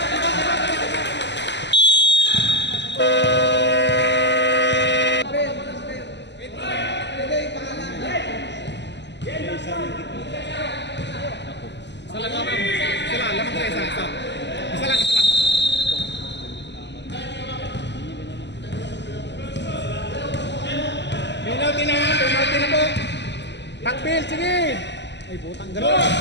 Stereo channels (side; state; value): right; late; 0.51 ms